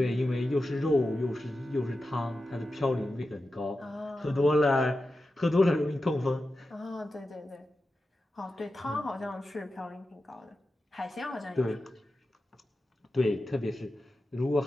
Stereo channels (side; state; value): both; normal; correlation 0.91